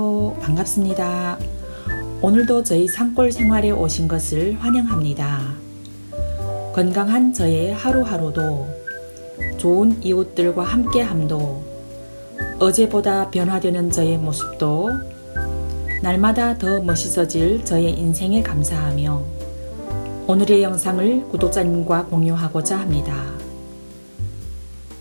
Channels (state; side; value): inverted; both; correlation -1.00